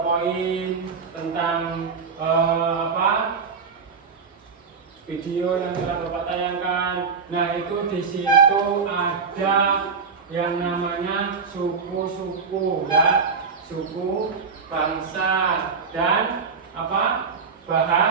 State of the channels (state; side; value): quieter; left; 5.4 dB